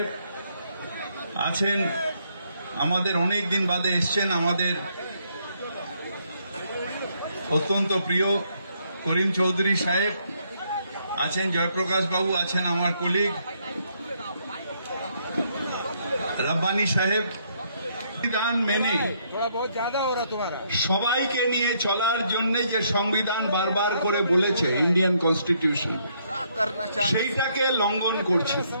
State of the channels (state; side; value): inverted; both; correlation -0.71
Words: আছেন আমাদের অনেক দিন বাদে এসেছেন আমাদের অত্যন্ত প্রিয় করিম চৌধুরী সাহেব আছেন জয়প্রকাশ বাবু আছেন আমার কলিগ রব্বানী সাহেব সংবিধান মেনে সবাইকে নিয়ে চলার জন্য যে সংবিধান বারবার করে বলেছে ইন্ডিয়ান কনস্টিটিউশন সেইটাকে লঙ্ঘন করছে